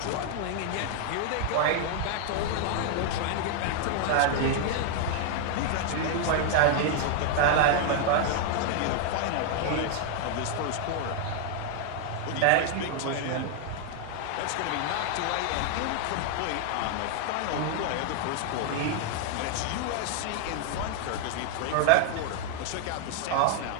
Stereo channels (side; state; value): both; different; correlation 0.00